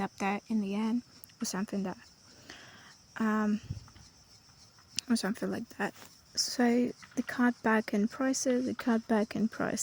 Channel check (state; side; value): identical; both; correlation 1.00